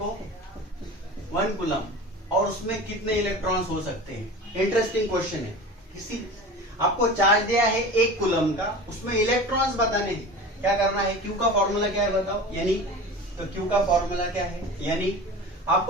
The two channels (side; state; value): both; normal; correlation 0.34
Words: 1 कूलम, और उसमें कितने इलेक्ट्रॉन्स हो सकते हैं? इंटरेस्टिंग क्वेश्चन है। किसी आपको चार्ज दिया है 1 कूलम का, उसमें इलेक्ट्रॉन्स बताने हैं, क्या करना है? क्यू का फॉर्मूला क्या है बताओ? यानी तो क्यू का फॉर्मूला क्या है? यानी